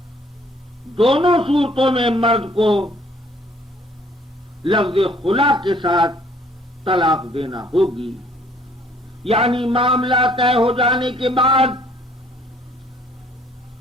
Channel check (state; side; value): normal; both; correlation 0.60